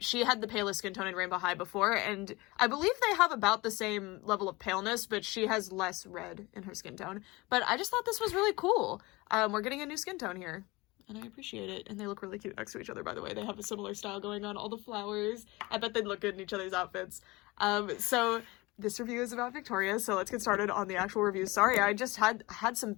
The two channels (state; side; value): quieter; right; 22.8 dB